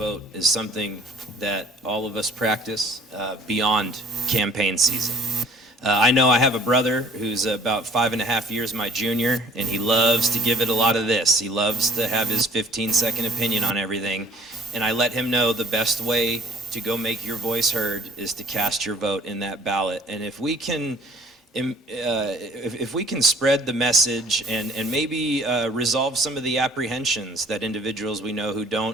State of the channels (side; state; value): both; normal; correlation 0.55